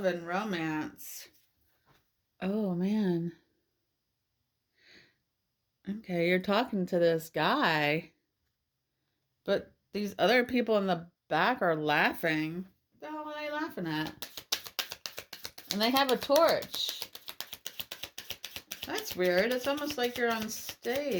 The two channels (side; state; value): both; identical; correlation 1.00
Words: and romance. Oh, man. Okay, you're talking to this guy. But these other people in the back are laughing. What the hell are they laughing at? And they have a torch. That's weird. It's almost like you're on